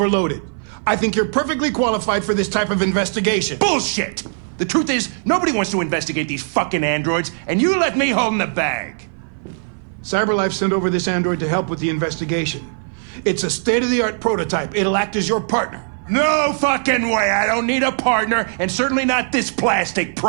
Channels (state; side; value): silent; left; 58 dB below the other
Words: I think you're perfectly qualified for this type of investigation. Bullshit! The truth is, nobody wants to investigate these fucking androids, and you let me hold the bag. CyberLife sent over this android to help with the investigation. It's a state-of-the-art prototype. It'll act as your partner. No fucking way! I don't need a partner, and certainly not this plastic